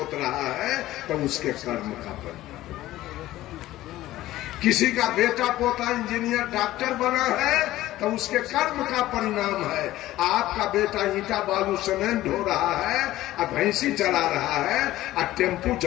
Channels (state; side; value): quieter; right; 15.5 dB